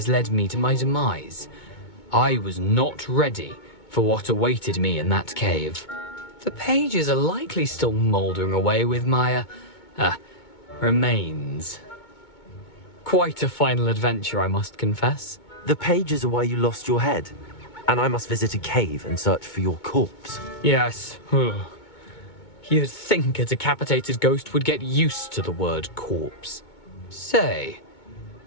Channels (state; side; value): late; right; 2.2 ms